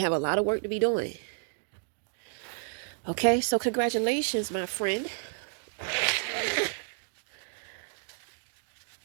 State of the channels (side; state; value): left; silent; digital silence